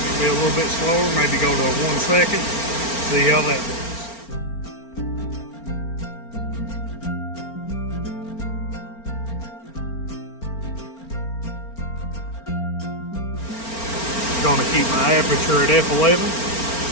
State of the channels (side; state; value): right; late; 4.4 ms